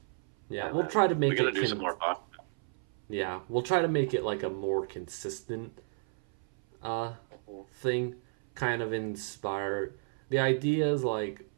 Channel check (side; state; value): left; silent; 56 dB below the other